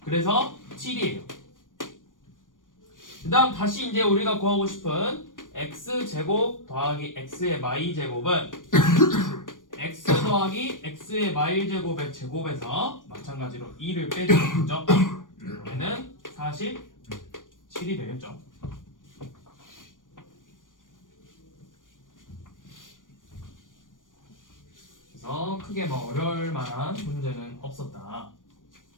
그래서 7이에요. 그 다음 다시 이제 우리가 구하고 싶은 x제곱 더하기 x의 마이제곱은 x 더하기 x의 마일제곱의 제곱에서 마찬가지로 2를 빼주면 되죠. 얘는 47이 되겠죠. 그래서 크게 뭐 어려울 만한 문제는 없었다.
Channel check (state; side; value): late; right; 0.88 ms